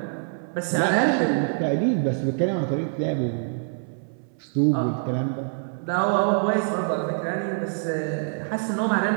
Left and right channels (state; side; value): silent; left; 62 dB below the other